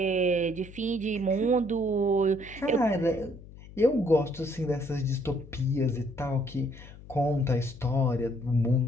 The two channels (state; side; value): noise; left; hum, 18 dB below the sound